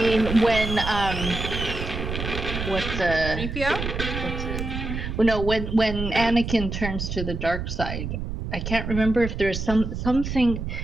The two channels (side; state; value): right; noise; rumble, 5 dB below the sound